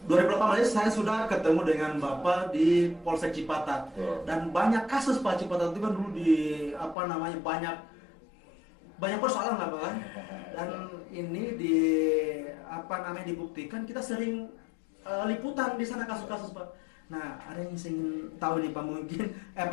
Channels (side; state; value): right; drops out; at 7.0 s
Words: 2018 saya sudah ketemu dengan Bapak di Polsek Cipatat. Betul. Dan banyak kasus Pak. Cipatat itu kan dulu di apa namanya banyak persoalan lah Pak. Dan ini di apa namanya dibuktikan kita sering liputan di sana kasus-kasus Pak. Nah, ada yang ingin tahu nih Pak, mungkin